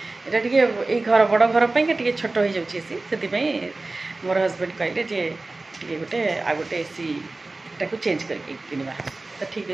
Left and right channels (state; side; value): quieter; left; 3.2 dB